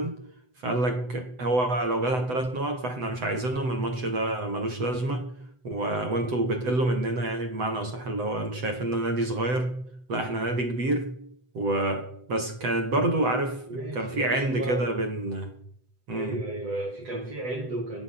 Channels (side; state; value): left; late; 7.9 ms